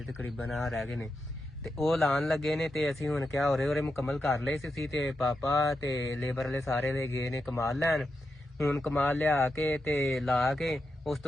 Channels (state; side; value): normal; both; correlation 0.87